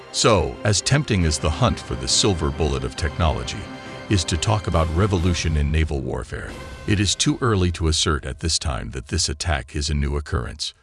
So, as tempting as the hunt for the silver bullet of technology is to talk about revolution in naval warfare, it is too early to assert at this time that this attack is a new occurrence.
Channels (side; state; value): both; identical; correlation 1.00